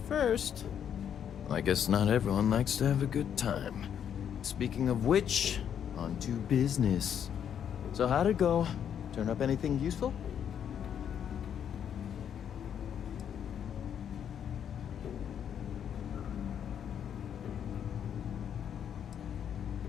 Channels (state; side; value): quieter; right; 8.8 dB